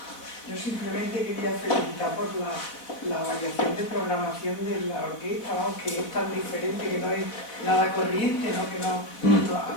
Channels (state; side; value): late; right; 4.0 ms